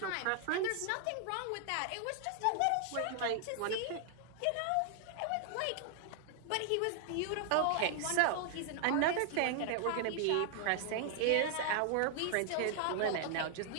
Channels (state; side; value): different; both; correlation 0.00